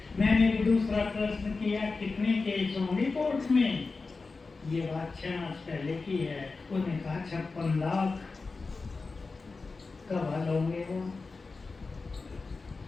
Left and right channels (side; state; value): right; quieter; 4.1 dB